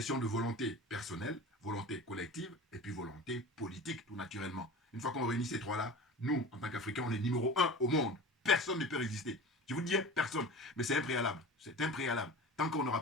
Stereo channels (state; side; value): normal; both; correlation 0.35